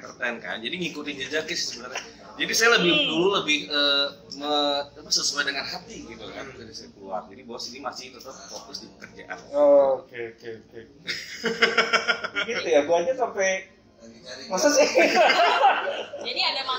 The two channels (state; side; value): identical; both; correlation 1.00